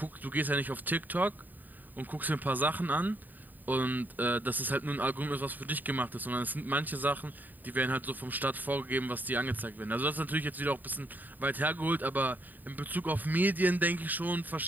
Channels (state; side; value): late; left; 0.087 ms